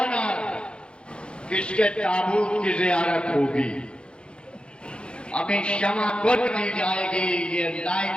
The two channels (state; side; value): late; right; 0.055 ms